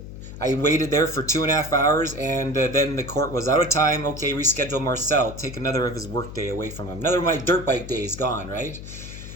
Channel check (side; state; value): left; noise; hum, 12 dB below the sound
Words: I waited there for 2.5 hours, and then the court was out of time. Okay, reschedule Marcel. Take another of his work day away from him. Another of my dirt bike days gone, right?